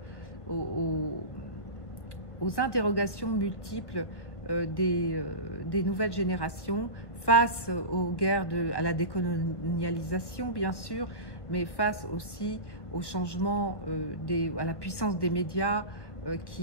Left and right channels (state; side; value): late; right; 1.1 ms